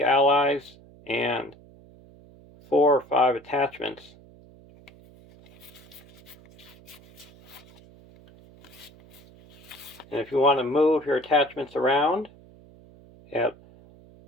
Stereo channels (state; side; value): noise; right; hum, 24 dB below the sound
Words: allies and 4 or 5 attachments. And if you want to move your attachments around, you have